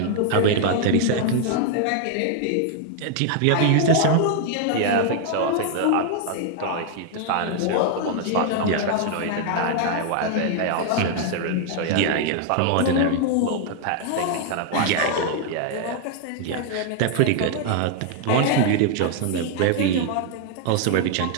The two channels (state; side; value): different; both; correlation 0.00